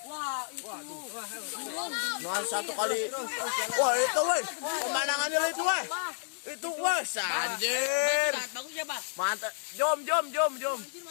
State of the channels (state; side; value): silent; right; 57 dB below the other